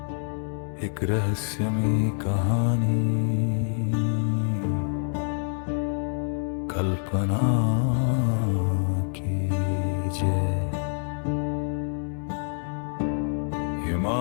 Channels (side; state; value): right; silent; 61 dB below the other